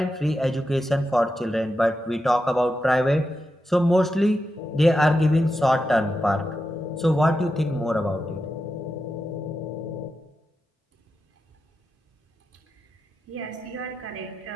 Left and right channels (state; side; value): normal; both; correlation 0.88